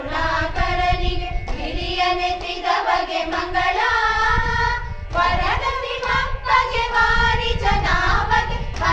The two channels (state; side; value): identical; both; correlation 1.00